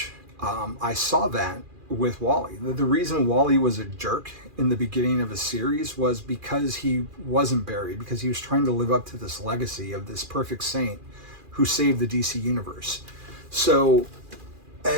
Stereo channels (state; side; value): late; left; 2.4 ms